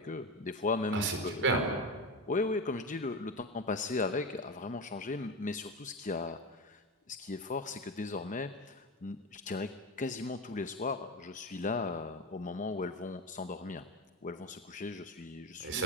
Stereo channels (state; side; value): normal; both; correlation 0.20